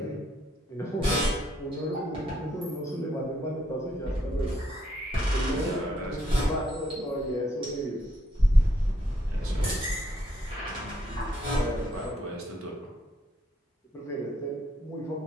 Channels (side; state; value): both; normal; correlation 0.73